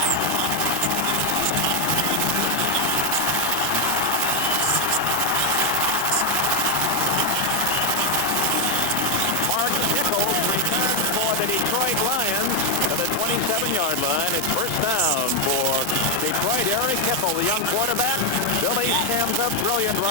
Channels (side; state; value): both; normal; correlation 0.01